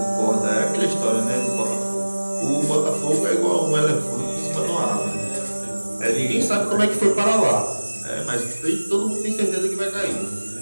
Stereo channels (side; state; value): both; inverted; correlation -1.00